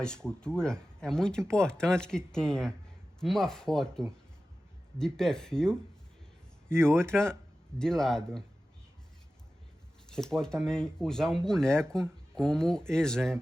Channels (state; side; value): normal; both; correlation 0.95